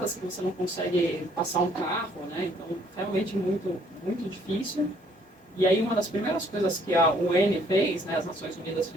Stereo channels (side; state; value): both; normal; correlation 0.63